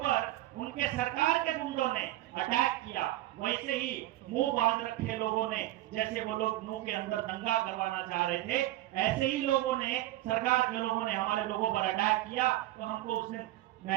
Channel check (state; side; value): quieter; left; 15.7 dB